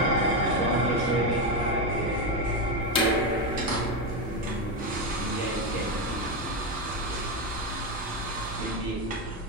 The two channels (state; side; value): normal; both; correlation 0.10